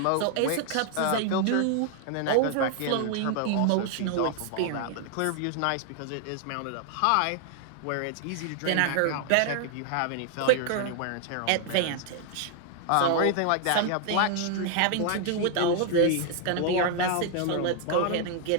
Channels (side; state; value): both; different; correlation 0.00